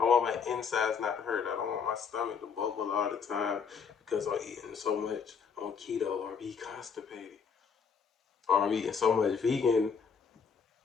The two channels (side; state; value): right; quieter; 6.2 dB